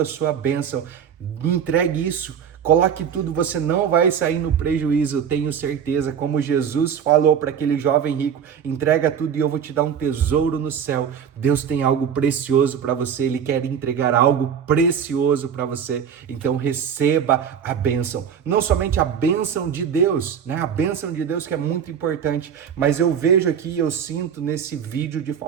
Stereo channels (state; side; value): quieter; left; 7.9 dB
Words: sua bênção, entregue isso. Coloque tudo, você não vai sair no prejuízo, eu tenho certeza. Como Jesus falou para aquele jovem rico: entrega tudo e eu vou te dar um tesouro no céu. Deus tem algo precioso para você, ele quer entregar algo precioso para você. Então receba a bênção, não somente a bênção de Deus, né? A bênção de Deus que é muito importante, mas eu vejo aqui, eu sinto nesse vídeo de